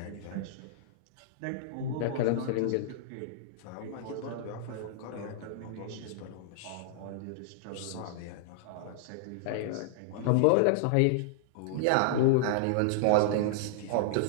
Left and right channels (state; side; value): different; both; correlation -0.01